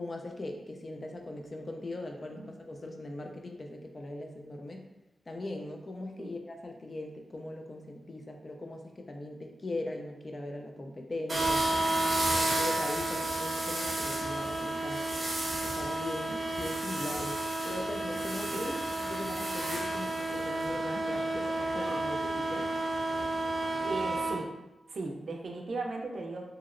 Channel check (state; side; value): normal; both; correlation 0.91